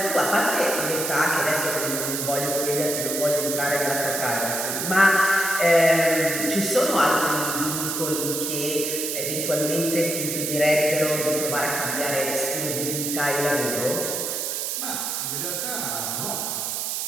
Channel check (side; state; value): right; noise; hiss, 2 dB below the sound